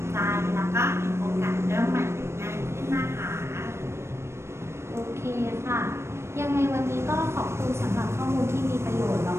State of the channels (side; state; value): left; late; 0.13 ms